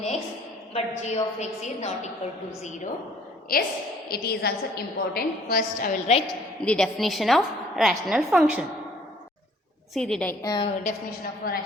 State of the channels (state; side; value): normal; both; correlation 0.58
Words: x, but g of x is not equal to 0. Yes, it is also important. First I will write the definition of rational function. See the definition of a